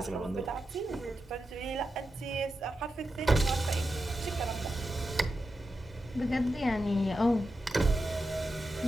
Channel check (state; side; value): normal; both; correlation 0.89